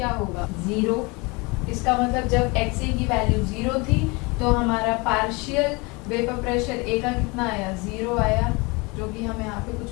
होगा 0। इसका मतलब जब एक्स ए की वैल्यू 0 थी तो हमारा पार्शियल वेपर प्रेशर ए का कितना आया, 0 आया, जो कि हम यहाँ पे कुछ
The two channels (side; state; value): right; quieter; 27.1 dB